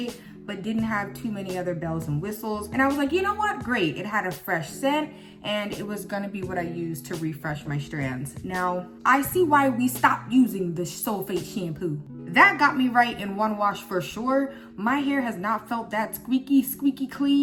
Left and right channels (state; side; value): identical; both; correlation 1.00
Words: but didn't have too many other bells and whistles. And I was like, you know what? Great. It had a fresh scent and it was gonna be what I used to refresh my strands. Now, I see why we stopped using the sulfate shampoo. That got me right in one wash for sure. My hair has not felt that squeaky